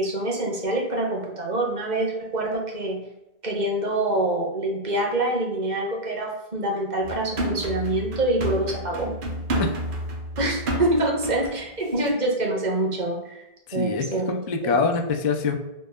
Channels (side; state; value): left; late; 2.1 ms